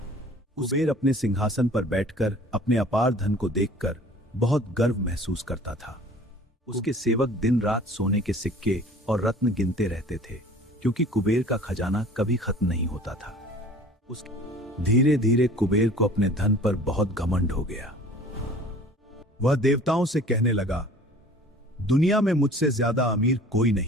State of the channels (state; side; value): normal; both; correlation 0.47